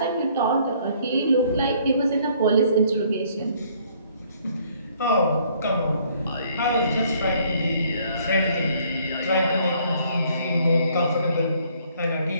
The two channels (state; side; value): inverted; both; correlation -0.62